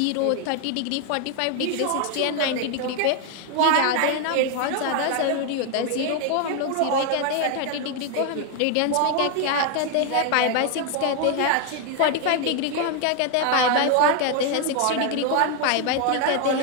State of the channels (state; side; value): different; both; correlation 0.01